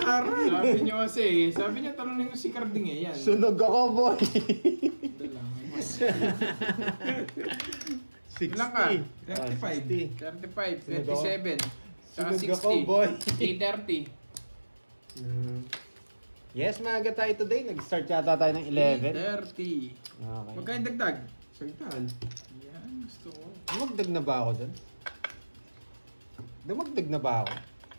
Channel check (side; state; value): both; inverted; correlation -1.00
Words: sabi niyo kasi, sabi niya talunin mo si Carding eh. Yan. Sunog ako, boy! Ito lang. 60. Ilan ka? 35. 35, Sunog ako. 27. Saka Sunog 60. ako, boy. 8:30. Yes, maaga tayo today. Nag-start yata tayo ng 11. 8:30. Okay. Magkain dagdag. Sagtaan. Yan, gusto ko. Dumagdag na ba ako dun? Dumagdag na ba ako?